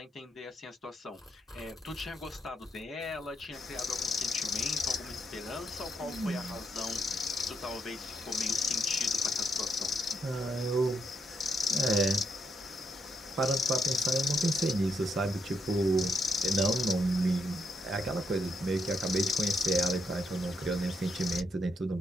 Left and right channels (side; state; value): both; normal; correlation 0.78